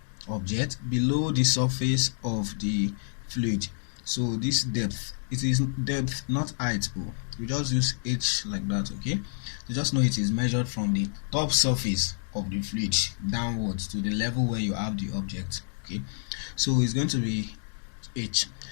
object below the surface of the fluid. So this depth, it is depth, not height. Oh, we just use h like that. Okay, you just know it is measured from the top surface of the fluid downwards to the level where you have the object. Okay, so it's going to be h.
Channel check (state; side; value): silent; right; digital silence